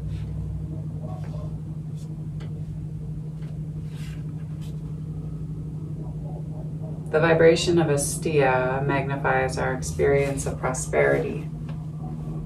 The vibration of asteya magnifies our experience of prosperity,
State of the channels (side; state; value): both; identical; correlation 1.00